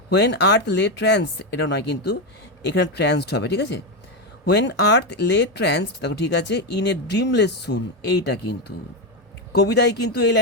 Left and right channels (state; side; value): normal; both; correlation 0.09